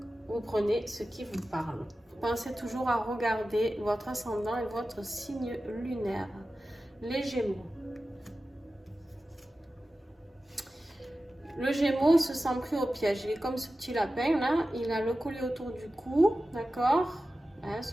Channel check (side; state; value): both; normal; correlation 0.94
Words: vous prenez ce qui vous parle. Pensez toujours à regarder votre ascendant et votre signe lunaire. Les Gémeaux. Le Gémeaux se sent pris au piège. Il est comme ce petit lapin là. Il a le collier autour du cou. D'accord, hein,